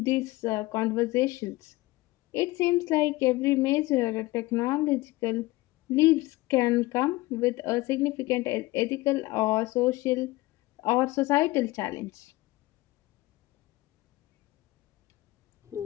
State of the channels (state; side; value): quieter; right; 19.9 dB